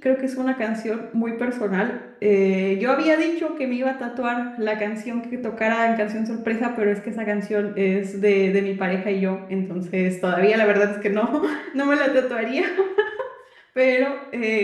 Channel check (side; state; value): both; identical; correlation 1.00